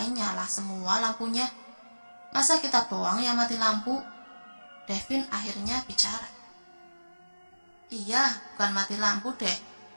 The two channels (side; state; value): both; inverted; correlation -1.00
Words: nyala semua lampunya. Masa kita doang yang mati lampu? Devin akhirnya bicara. Iya, bukan mati lampu deh.